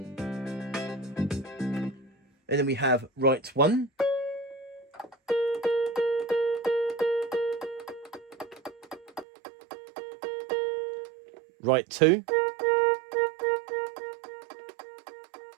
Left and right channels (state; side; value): drops out; left; at 9.2 s